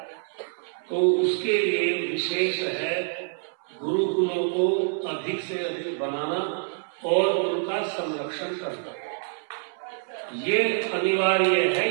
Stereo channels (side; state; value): left; silent; 61 dB below the other